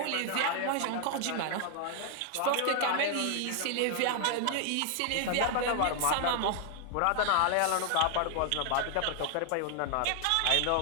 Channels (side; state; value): both; different; correlation 0.00